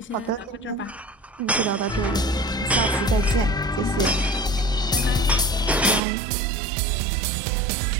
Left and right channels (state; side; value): drops out; left; at 6.0 s